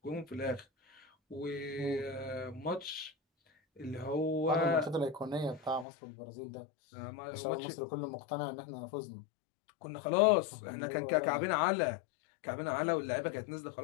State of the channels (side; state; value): right; drops out; at 5.9 s